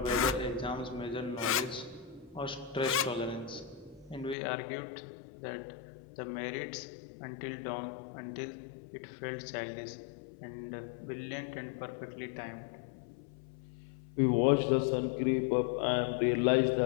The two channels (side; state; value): right; drops out; at 4.4 s